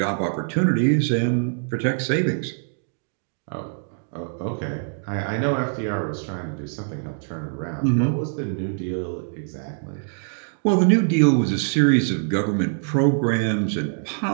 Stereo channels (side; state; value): left; silent; 63 dB below the other